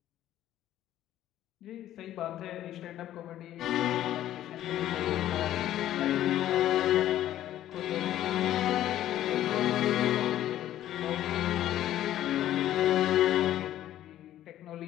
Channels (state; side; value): quieter; right; 12.7 dB